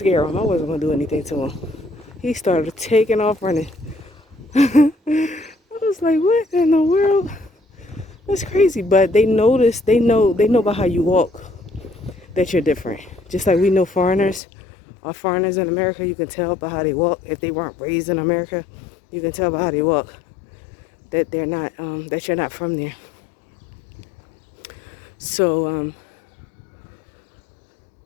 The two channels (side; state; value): right; drops out; at 14.4 s